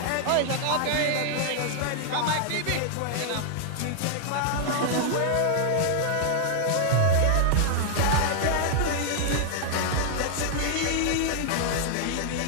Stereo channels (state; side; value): different; both; correlation 0.00